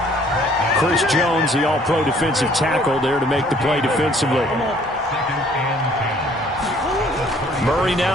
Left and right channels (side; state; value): both; normal; correlation 0.59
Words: Chris Jones, the all-pro defensive tackle, there to make the play defensively. Murray